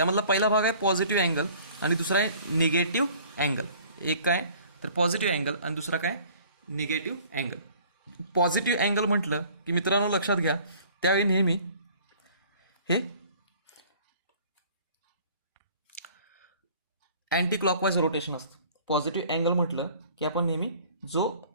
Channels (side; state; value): both; inverted; correlation -0.51